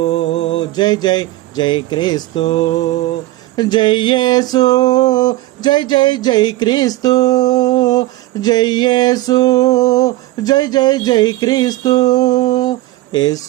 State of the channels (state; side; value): quieter; left; 17.4 dB